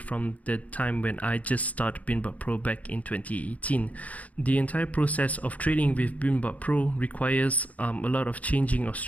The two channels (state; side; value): late; right; 0.070 ms